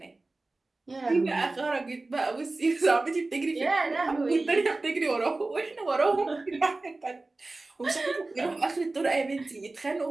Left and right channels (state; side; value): quieter; left; 3.2 dB